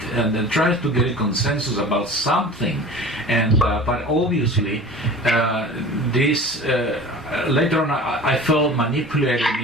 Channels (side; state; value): both; normal; correlation 0.39